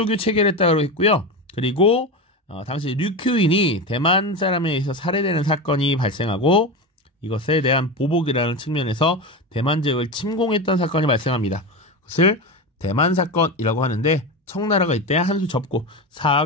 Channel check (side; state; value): both; normal; correlation 0.20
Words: 체결했다고 했고요. 그리고 당시 류큐인이 대만 사람에 의해서 살해되는 사건이 발생하고, 이것에 대한 보복이라는 측면에서 대만 지역을 침공했던 사건이 발생합니다. 그것을 대만 사건이라고 하는데, 청나라가 이때 한수 접고